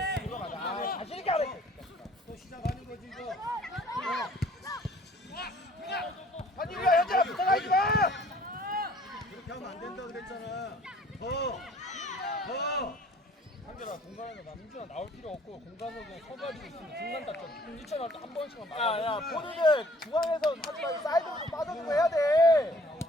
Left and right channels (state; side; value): normal; both; correlation 0.56